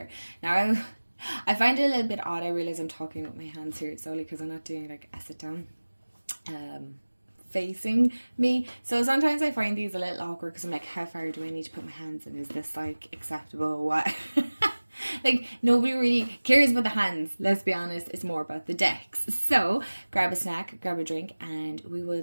Now I find it a little bit odd. I realize I'm talking with my hands here solely because I'm not doing like a sit down facing me, so sometimes I find these a little awkward because I'm like, how far do I need to put my hands in? Is this like acceptable? What? Like, nobody really cares about the hands, let's be honest. It's more about the decks. So grab a snack, grab a drink, and we will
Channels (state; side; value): inverted; both; correlation -1.00